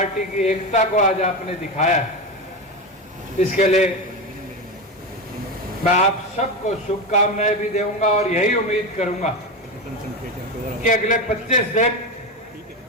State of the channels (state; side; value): normal; both; correlation 0.18